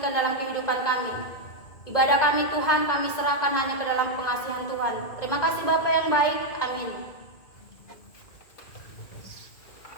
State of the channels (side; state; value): right; late; 2.2 ms